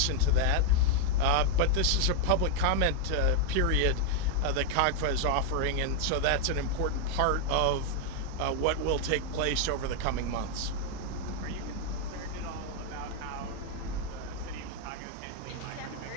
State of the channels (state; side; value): different; both; correlation 0.00